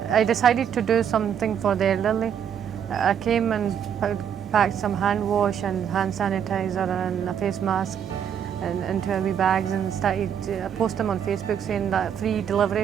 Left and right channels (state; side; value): quieter; left; 8.5 dB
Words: I decided to do something for the elderly. I came and packed some hand wash and hand sanitizer and a face mask and into heavy bags and started to post them on Facebook saying that free